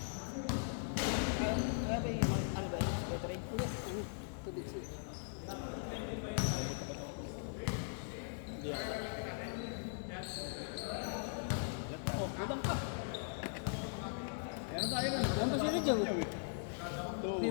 Oh, kulang pa. Ayan tayo na. Yan ba sila dyan?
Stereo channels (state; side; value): silent; right; digital silence